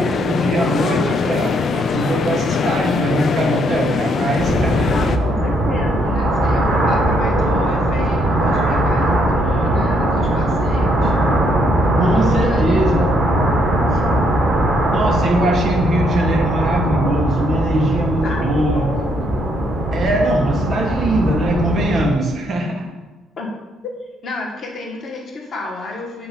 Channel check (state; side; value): normal; both; correlation 0.72